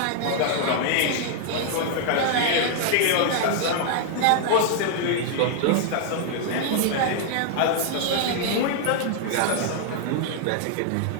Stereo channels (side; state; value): both; different; correlation -0.01